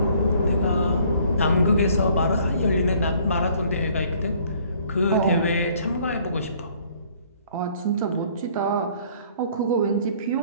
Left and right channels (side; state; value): both; inverted; correlation -0.59